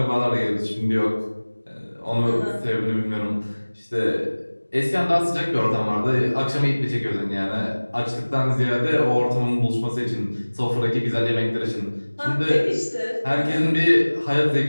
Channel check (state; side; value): inverted; both; correlation -1.00